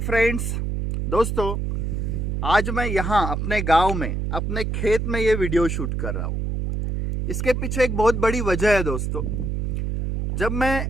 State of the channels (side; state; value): right; noise; hum, 1 dB below the sound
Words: दोस्तों, आज मैं यहाँ अपने गांव में अपने खेत में ये वीडियो शूट कर रहा हूँ। इसके पीछे एक बहुत बड़ी वजह है दोस्तों। जब मैं